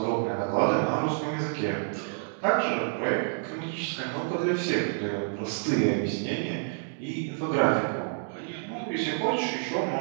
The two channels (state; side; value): silent; left; digital silence